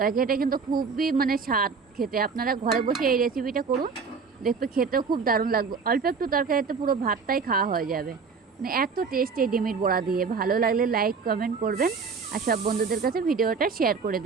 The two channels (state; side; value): quieter; left; 5.3 dB